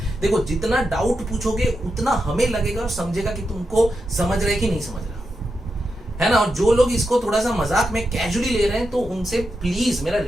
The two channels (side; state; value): both; normal; correlation 0.87